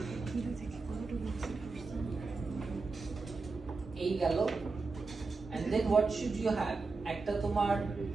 এই গেল। and then what should you have? একটা তোমার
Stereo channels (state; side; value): quieter; left; 4.1 dB